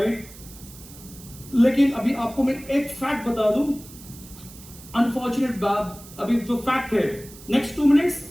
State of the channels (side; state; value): right; noise; hiss, 19 dB below the sound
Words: लेकिन अभी आपको मैं एक फैक्ट बता दूं, अनफॉर्चुनेट बात, अभी जो फैक्ट है, next 2 minutes